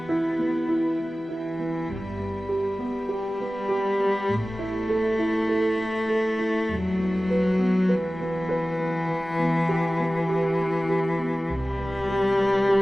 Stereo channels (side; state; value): both; normal; correlation 0.97